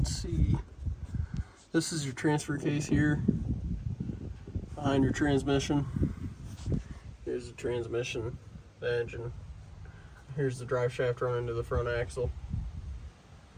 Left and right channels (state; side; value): identical; both; correlation 1.00